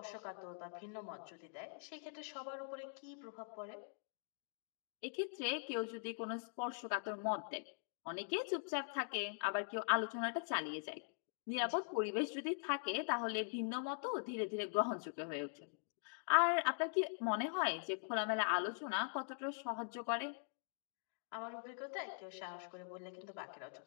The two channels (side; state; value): right; silent; digital silence